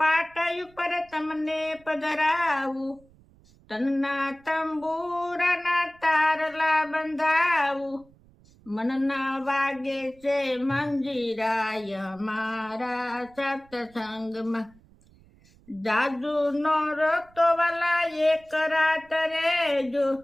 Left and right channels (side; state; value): right; noise; rumble, 28 dB below the sound